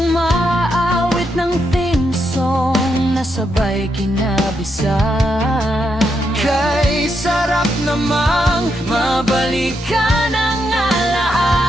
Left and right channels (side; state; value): both; normal; correlation 0.81